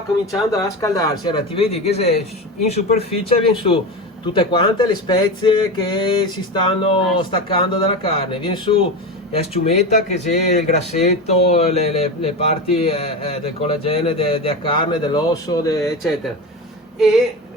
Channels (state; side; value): normal; both; correlation 0.22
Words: cominciando a scaldarsi, allora ti vedi che se in superficie viene su tutte quante le spezie che si stanno staccando dalla carne, viene su la sciumetta che c'è il grassetto, le parti del collagene della carne, dell'osso, eccetera. E